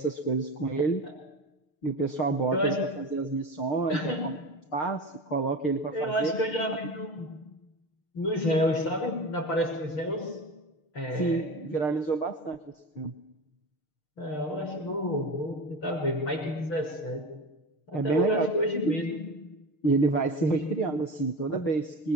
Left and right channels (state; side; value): late; right; 6.6 ms